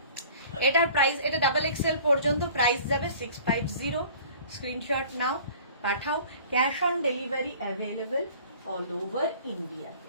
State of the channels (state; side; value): inverted; both; correlation -0.48